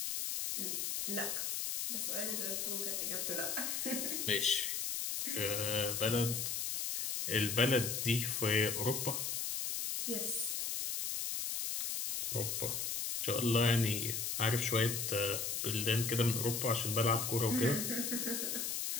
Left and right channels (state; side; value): noise; left; hiss, 1 dB below the sound